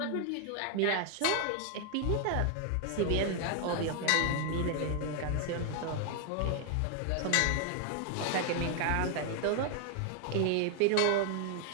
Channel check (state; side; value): different; both; correlation 0.00